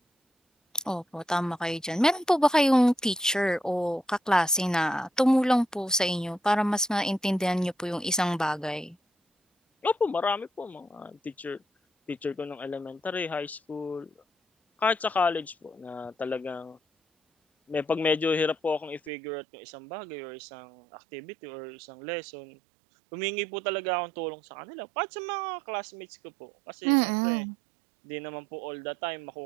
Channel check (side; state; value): left; drops out; at 19.1 s